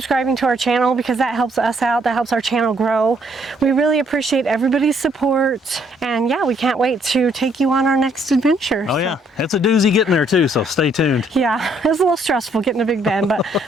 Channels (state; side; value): normal; both; correlation 0.68